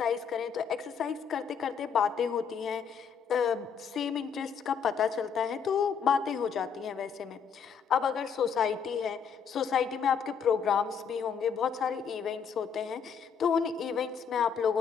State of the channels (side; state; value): right; quieter; 6.7 dB